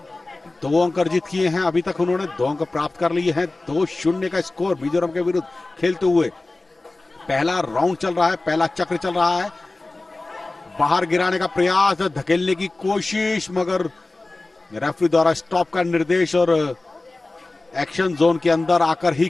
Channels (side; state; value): right; quieter; 3.1 dB